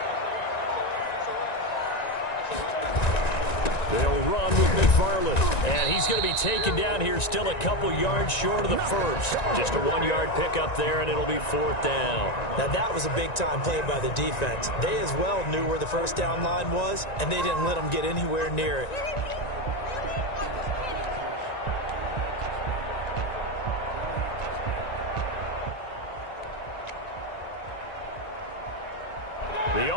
They'll run with McFarland. And he's going to be taken down here still a couple yards short of the first. Just a 1-yard pickup there, and it'll be 4th down. Now, that was a big-time play by the defense. They as well knew where the first down line was, and they didn't let them get anywhere near it. The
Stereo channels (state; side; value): late; right; 1.9 ms